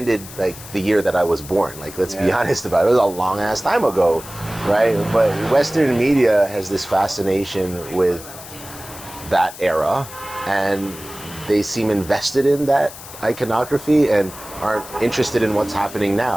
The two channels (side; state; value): left; noise; hiss, 15 dB below the sound